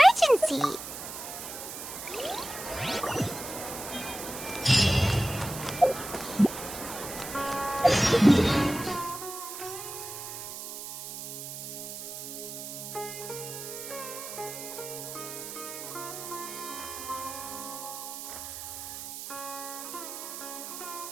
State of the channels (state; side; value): noise; right; hiss, 9 dB below the sound